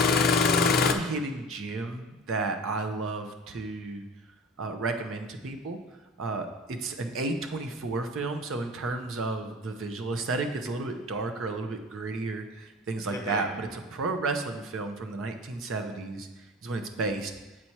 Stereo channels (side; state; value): both; normal; correlation 0.37